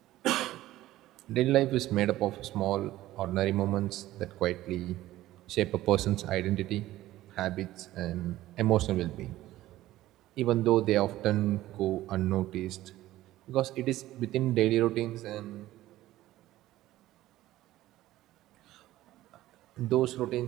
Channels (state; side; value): quieter; left; 15.4 dB